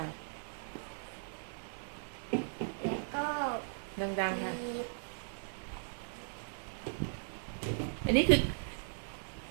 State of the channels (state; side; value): silent; left; digital silence